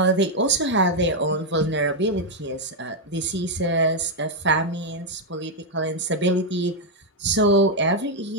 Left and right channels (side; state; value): both; normal; correlation 0.01